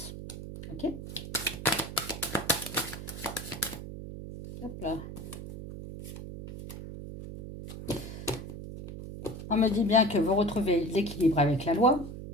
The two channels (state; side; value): noise; right; hum, 10 dB below the sound